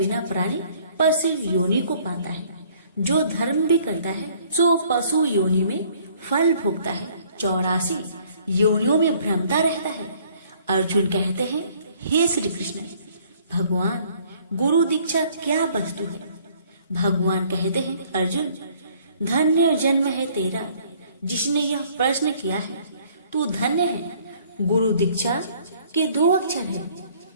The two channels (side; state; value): both; inverted; correlation -0.59